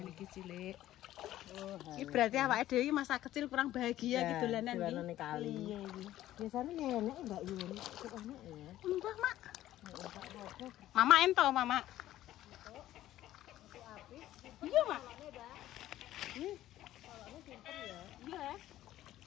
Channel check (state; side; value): quieter; right; 13.9 dB